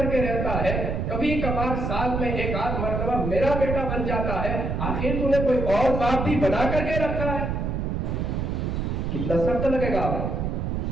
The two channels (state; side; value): noise; right; rumble, 1 dB below the sound